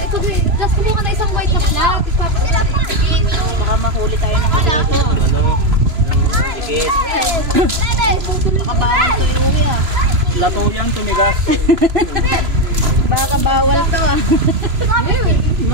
Just kumuha ka na isang white na flat. Baka mahuli tayo ng dito. Baka bawal to iuwi ah. Lato yan, tumigas. Baka bawal to ah.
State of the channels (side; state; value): left; late; 3.0 ms